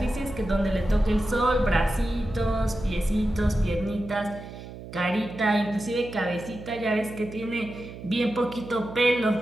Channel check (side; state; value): right; noise; hum, 13 dB below the sound